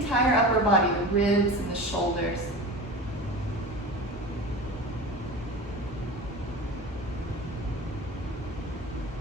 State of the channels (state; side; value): normal; both; correlation 0.32